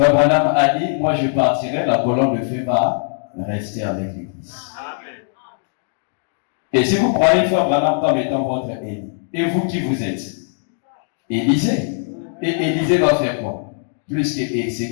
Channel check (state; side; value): silent; right; digital silence